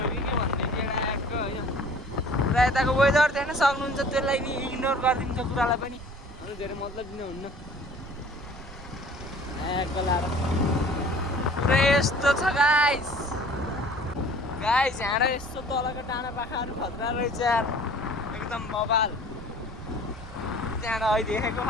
हो कि के भन्दै थियो ट्याक्क होइन। पुरा यताको वेदर देख्न सक्नुहुन्छ, त्यसलाई नि इग्नोर गरिदिन्छ कुरालाई पनि, अरू धेरै मतलब दिनुहुन्न। ट्याक्क लाएर पुरै यस्तो छ गाइस। गाइस यहाँ यस्तो तलको टाढा पाखाहरू खतरा रहेछ यार, एकदम बबाल। त्यहाँ अहिले देखेको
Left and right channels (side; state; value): right; noise; rumble, 16 dB below the sound